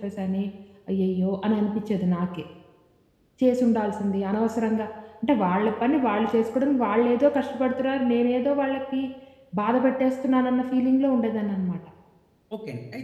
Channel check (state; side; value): identical; both; correlation 1.00